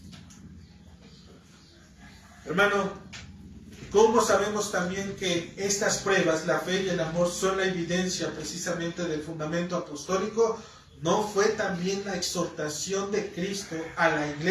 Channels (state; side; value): identical; both; correlation 1.00